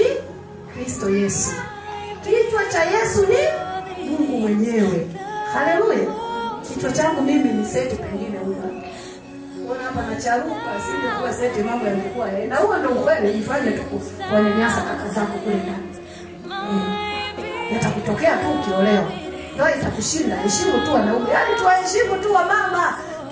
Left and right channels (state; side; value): identical; both; correlation 1.00